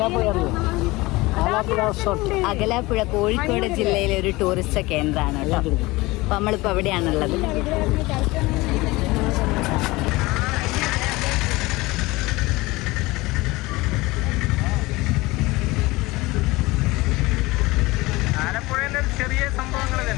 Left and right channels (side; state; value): right; quieter; 21.4 dB